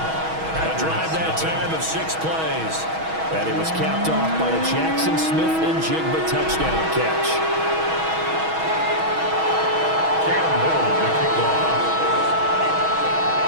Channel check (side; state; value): left; late; 6.2 ms